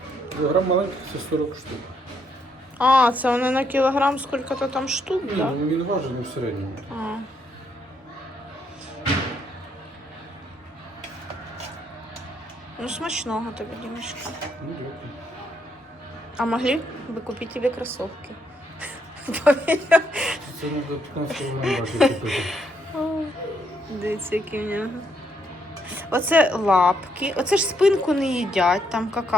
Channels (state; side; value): normal; both; correlation 0.74